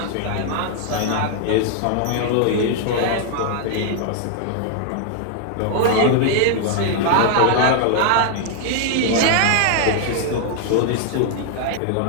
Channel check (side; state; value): both; different; correlation 0.00